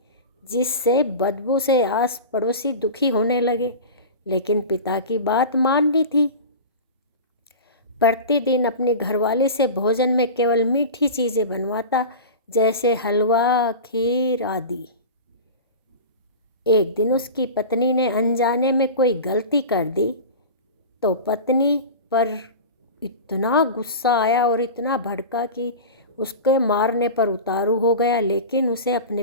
जिससे बदबू से आस पड़ोसी दुखी होने लगे। लेकिन पिता की बात माननी थी। प्रतिदिन अपनी घरवाली से भोजन में केवल मीठी चीज़ें बनवाता, जैसे हलवा, खीर आदि। एक दिन उसकी पत्नी ने अनजाने में कोई गलती कर दी तो पत्नी पर इतना गुस्सा आया और इतना भड़का कि उसके मारने पर उतारू हो गया। लेकिन उसे अपने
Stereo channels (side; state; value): both; inverted; correlation -0.30